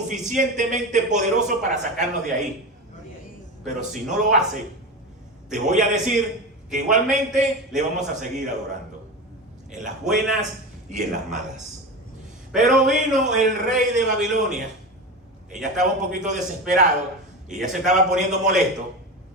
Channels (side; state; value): both; normal; correlation 0.24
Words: poderoso para sacarnos de ahí. Pero si no lo hace, te voy a decir que igualmente le vamos a seguir adorando. en las buenas y en las malas. Pero vino el rey de Babilonia, que ya estaba un poquito desesperado y ya se estaba poniendo molesto,